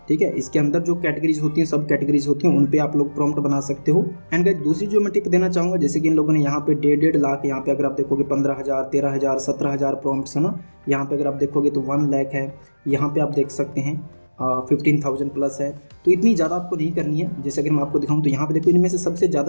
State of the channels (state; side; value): inverted; both; correlation -1.00